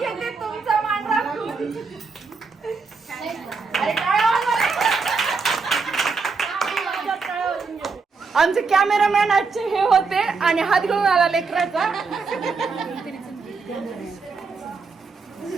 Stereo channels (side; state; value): left; quieter; 4.6 dB